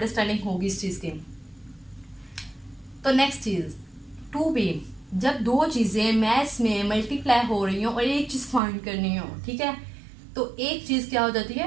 होगी इस चीज़ की। तो नेक्स्ट चीज़ 2b, जब दो चीज़ें मैथ्स में मल्टीप्लाई हो रही हो और एक चीज़ फाइंड करनी हो, ठीक है, तो एक चीज़ क्या हो जाती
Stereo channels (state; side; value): drops out; left; at 8.6 s